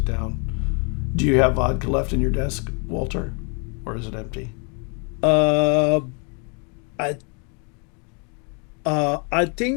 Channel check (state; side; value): quieter; right; 36.6 dB